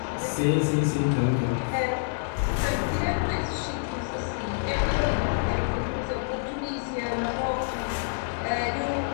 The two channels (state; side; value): silent; right; 60 dB below the other